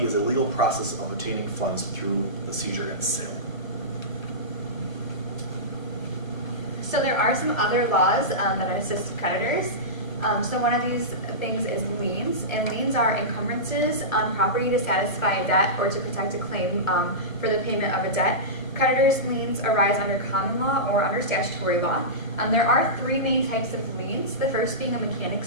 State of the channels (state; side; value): late; right; 1.1 ms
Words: is a legal process of obtaining funds through the seizure and sale. So there are some other laws that assist creditors. So one of these things is liens, and liens are encumbrances on property to satisfy a debt or to protect a claim for the payment of a debt. Creditors' liens arise under common law or under statutory law. There are three main types of liens, the first being a